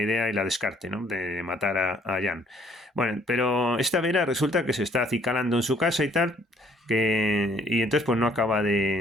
y la descarte, ¿no?, de matar a Jan. Bueno, pero esta Vera resulta que se está acicalando en su casa y tal, y entonces pues no acaba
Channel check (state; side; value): normal; both; correlation 0.62